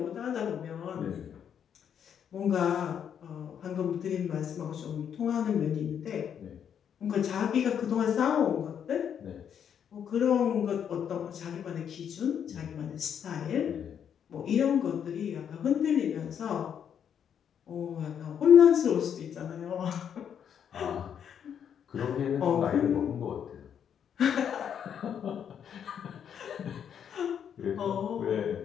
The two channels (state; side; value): quieter; right; 8.4 dB